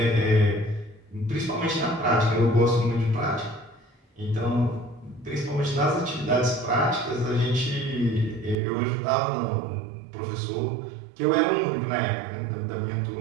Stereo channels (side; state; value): left; drops out; at 8.6 s